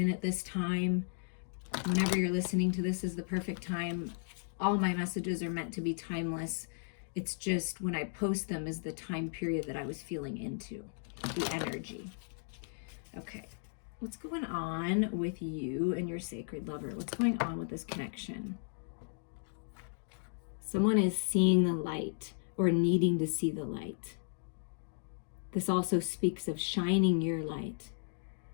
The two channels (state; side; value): silent; right; digital silence